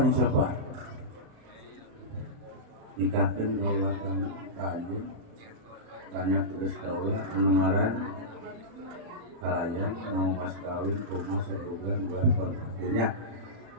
insya Allah nikahkan kaulah kajian tanya terus kaulah pendengaran kalayan mau pas kawin rumah sebulan buat kontraknya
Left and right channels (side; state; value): left; late; 35 ms